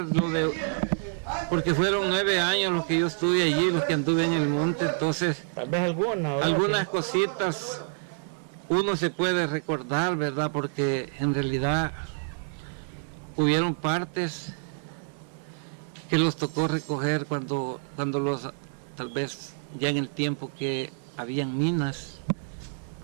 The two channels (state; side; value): silent; left; digital silence